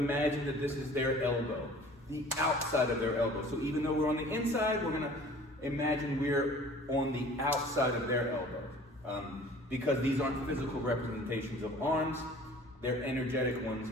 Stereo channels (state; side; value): normal; both; correlation 0.48